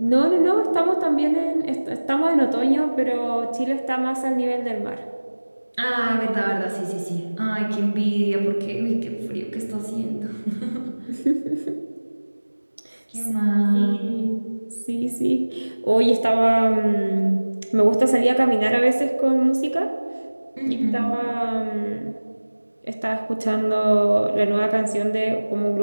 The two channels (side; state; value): both; inverted; correlation -1.00